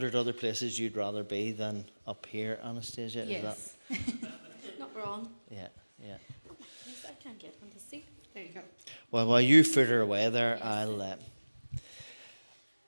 other places you'd rather be than up here, Anastasia. Yes. Not wrong. Yeah. Yes, I can't get on the seat. There you go. Well, while you fritter away there, Yes.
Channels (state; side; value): inverted; both; correlation -1.00